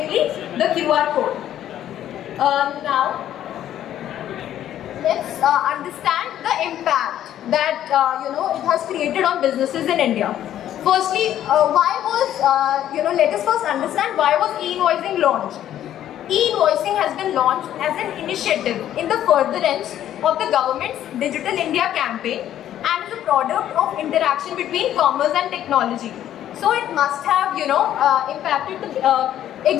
the QR code. Now, let's understand the impact that it has created on businesses in India. Firstly, why was let us first understand why was e-invoicing launched. E-invoicing has been launched as an initiative in the furtherance of the government's Digital India campaign and is a product of interaction between commerce and technology. So it must have impacted the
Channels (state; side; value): quieter; right; 11.5 dB